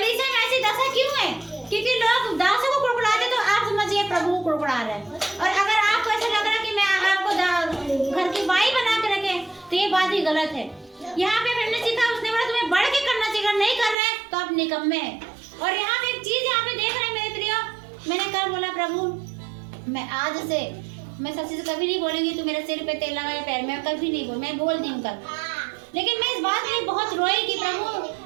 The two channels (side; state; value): left; drops out; at 14.0 s